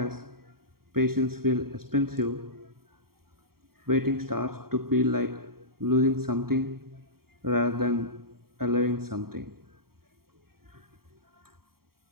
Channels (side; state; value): left; late; 0.93 ms